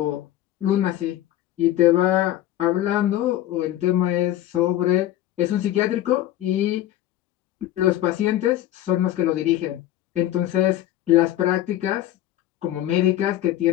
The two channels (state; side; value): quieter; right; 13.3 dB